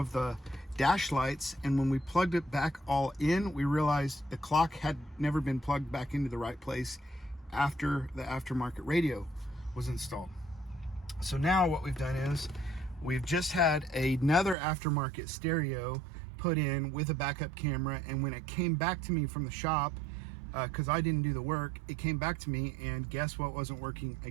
the dash lights, and when we plugged it back all in, we realized the clock had never been plugged back into the right place after the aftermarket radio was installed. So now what we've done is we've just had another aftermarket stereo put in with a backup camera, and when it came back to me from the shop, because I didn't do the work, it came back to me, and guess what wasn't working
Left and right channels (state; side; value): drops out; left; at 14.6 s